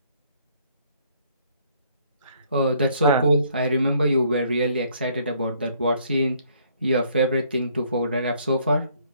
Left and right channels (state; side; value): inverted; both; correlation -0.64